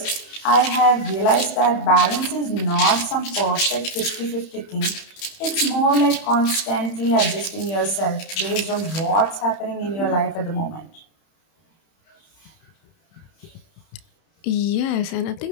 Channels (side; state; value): right; late; 31 ms